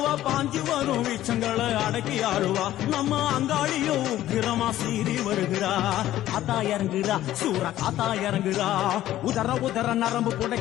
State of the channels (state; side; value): quieter; right; 13.7 dB